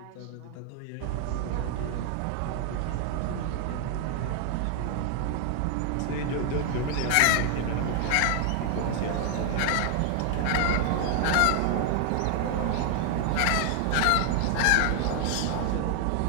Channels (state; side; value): different; both; correlation 0.00